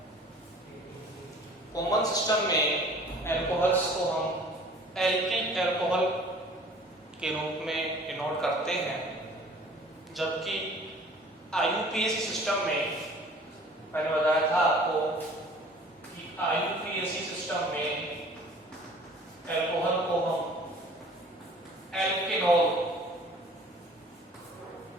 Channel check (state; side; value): normal; both; correlation 0.49